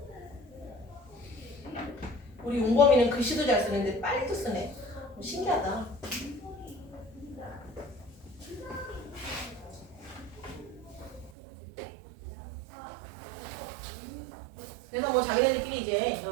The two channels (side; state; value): left; drops out; at 11.3 s